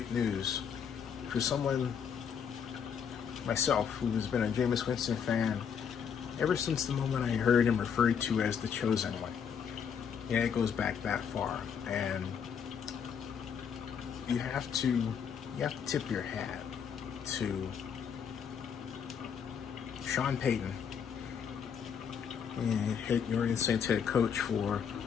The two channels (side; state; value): right; quieter; 7.3 dB